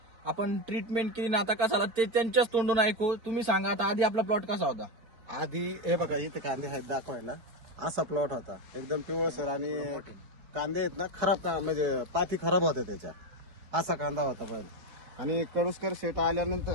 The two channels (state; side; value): late; left; 4.3 ms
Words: आपण ट्रीटमेंट केली ना, आता कसा झाला ते त्यांच्याच तोंडून ऐकू. तुम्ही सांगा आता आधी आपला प्लॉट कसा होता? आधी हे बघा इथे कांदे आहेत दाखवायला, असा प्लॉट होता एकदम पिवळसर आणि कांदे आहेत ना खराब म्हणजे पाती खराब होत्या त्याच्या, असा कांदा होता पहिला. आणि कडुसकर शेट